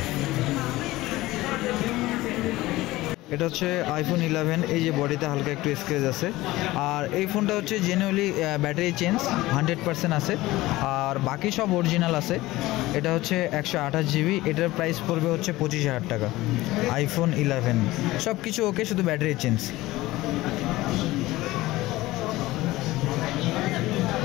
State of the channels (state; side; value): quieter; right; 18.2 dB